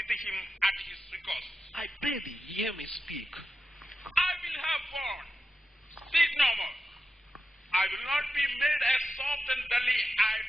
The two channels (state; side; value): normal; both; correlation 0.92